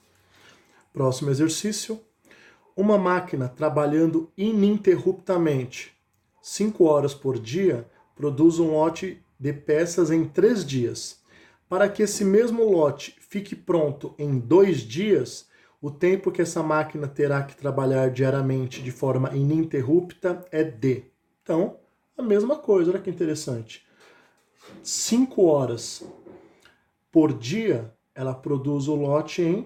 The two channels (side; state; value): both; identical; correlation 1.00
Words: Próximo exercício. Uma máquina trabalhando ininterruptamente 5 horas por dia produz um lote de peças em 3 dias. Para que esse mesmo lote fique pronto em 2 dias, o tempo que essa máquina terá que trabalhar diariamente de forma ininterrupta é D. Então, a mesma coisa, olha que interessante. 5 horas por dia, ela produz o lote em